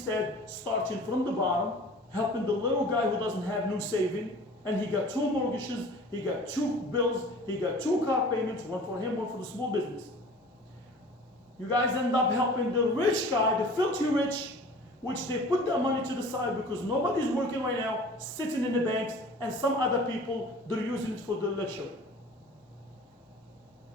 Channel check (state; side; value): normal; both; correlation 0.44